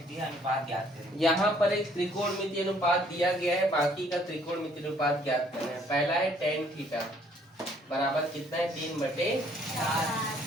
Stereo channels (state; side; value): normal; both; correlation 0.62